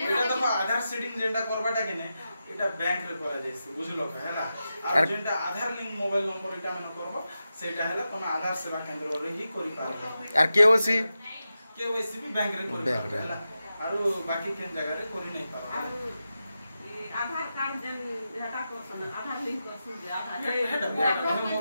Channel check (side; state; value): both; inverted; correlation -0.90